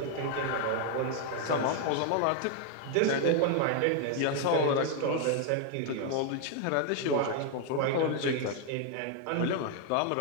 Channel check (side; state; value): both; different; correlation 0.00